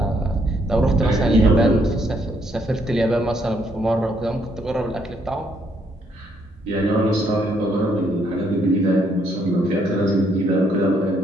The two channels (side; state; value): both; normal; correlation 0.71